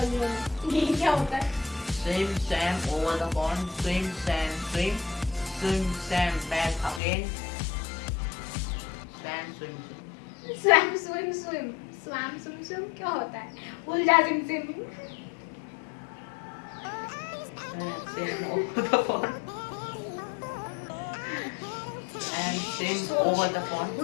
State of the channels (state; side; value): drops out; right; at 7.0 s